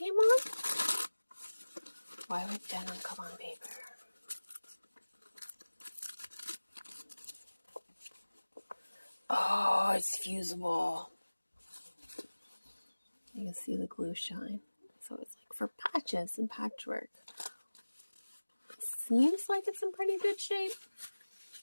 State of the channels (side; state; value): both; inverted; correlation -1.00